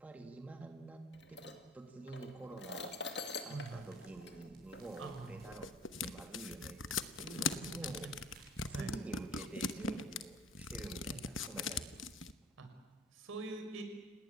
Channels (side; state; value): both; normal; correlation 0.48